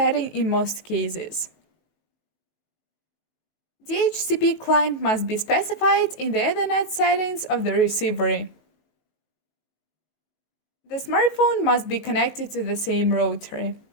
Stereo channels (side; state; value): right; late; 19 ms